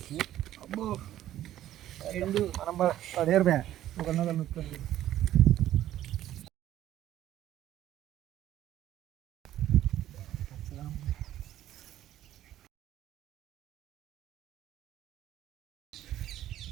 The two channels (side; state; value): left; quieter; 12.8 dB